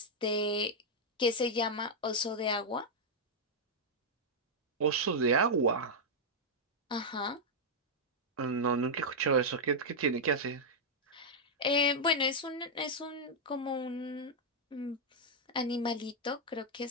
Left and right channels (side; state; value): both; normal; correlation -0.03